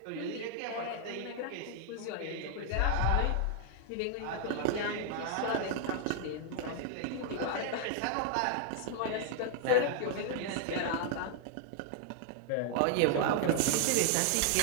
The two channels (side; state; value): both; different; correlation 0.00